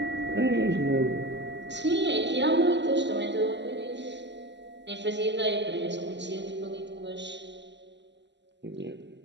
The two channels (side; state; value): left; late; 0.51 ms